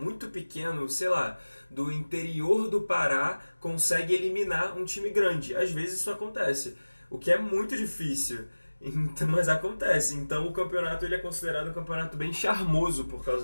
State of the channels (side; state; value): both; inverted; correlation -1.00